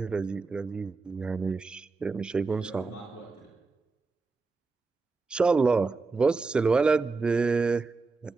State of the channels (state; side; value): quieter; left; 4.1 dB